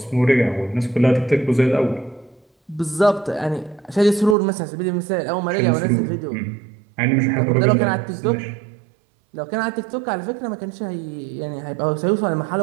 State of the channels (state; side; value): drops out; left; at 4.4 s